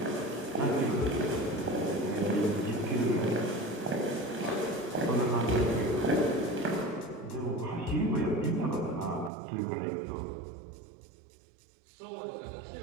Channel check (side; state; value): left; drops out; at 9.3 s